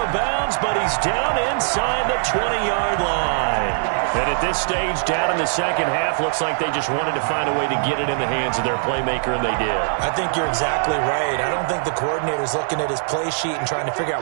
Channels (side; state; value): left; silent; 65 dB below the other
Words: bounds, but he's down inside the 20-yard line. And at this stage, down in the second half, looks like they just wanted to find a way to get it in the hands of their playmaker, and they did. I think you're exactly right. I don't think the coordinator's looking at his play sheet and trying to figure